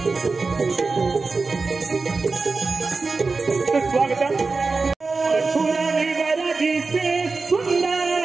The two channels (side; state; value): left; quieter; 4.1 dB